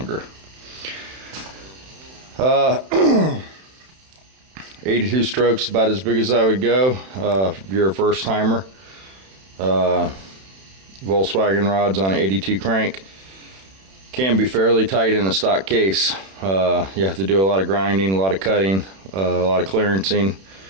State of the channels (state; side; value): late; left; 31 ms